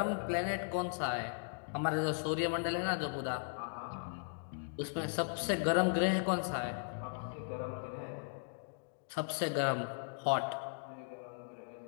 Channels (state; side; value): silent; right; digital silence